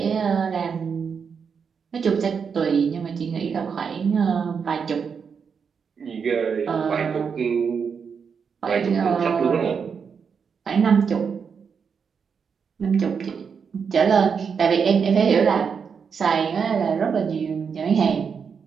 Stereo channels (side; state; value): left; quieter; 6.3 dB